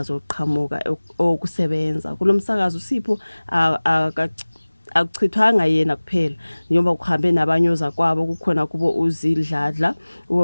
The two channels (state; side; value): inverted; both; correlation -1.00